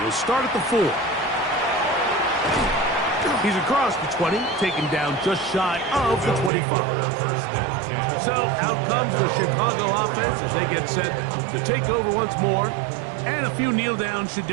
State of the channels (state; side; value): drops out; left; at 6.5 s